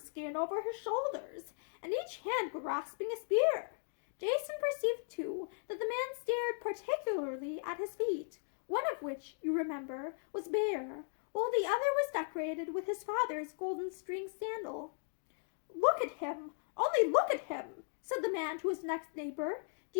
over his shoulders, and each hand grasping a spear. Jason perceived, too, that the man stared particularly at his feet, one of which, you remember, was bare, while the other was decorated with his father's golden string sandal. "Look at him! Only look at him!" said the man to his next neighbor. "Do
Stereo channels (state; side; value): silent; right; digital silence